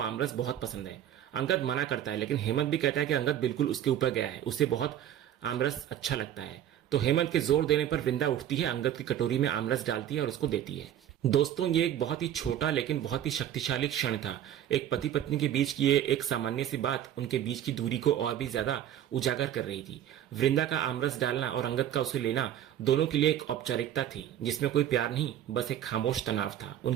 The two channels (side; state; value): left; quieter; 10.9 dB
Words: आमरस बहुत पसंद है। अंगद मना करता है लेकिन हेमंत भी कहता है कि अंगद बिल्कुल उसके ऊपर गया है, उसे बहुत आमरस अच्छा लगता है। तो हेमंत के जोर देने पर वृंदा उठती है, अंगद की कटोरी में आमरस डालती है और उसको देती है। दोस्तों, ये एक बहुत ही छोटा लेकिन बहुत ही शक्तिशाली क्षण था। एक पति पत्नी के बीच की ये एक सामान्य सी बात उनके बीच की दूरी को और भी ज्यादा उजागर कर रही थी। वृंदा का आमरस डालना और अंगद का उसे लेना दोनों के लिए एक औपचारिकता थी जिसमें कोई प्यार नहीं, बस एक खामोश तनाव था।